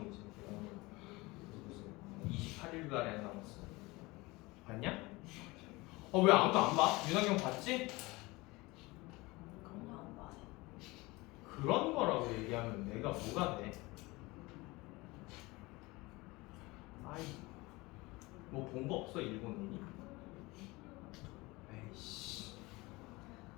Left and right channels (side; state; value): right; quieter; 22.6 dB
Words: 지금 개봉하는 날. 20 28일도 안 남았어. 봤냐? 왜 아무도 안 봐? 윤학경 봤지? 그냥 안 봐요. 그런 거라고 얘기하면 내가 뭐가 돼? 아이, 뭐 본 거 없어 일본인이? 에이씨,